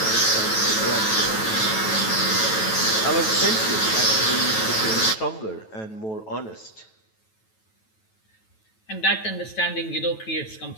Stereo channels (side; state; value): right; late; 9.2 ms